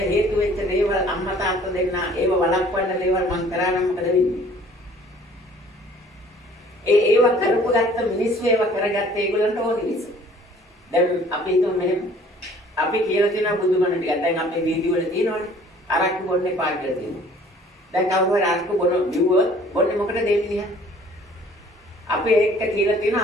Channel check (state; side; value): normal; both; correlation 0.54